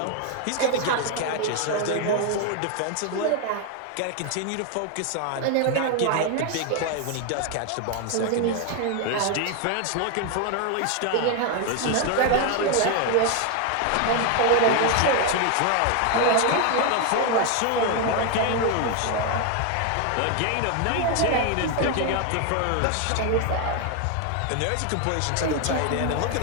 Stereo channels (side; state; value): both; different; correlation 0.01